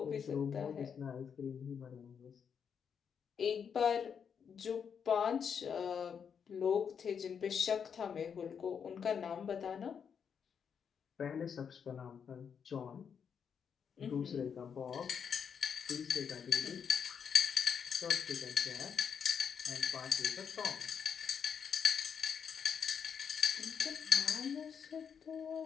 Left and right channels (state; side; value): quieter; right; 7.1 dB